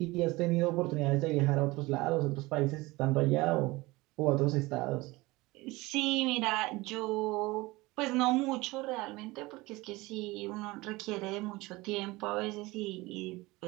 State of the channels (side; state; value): left; quieter; 21.4 dB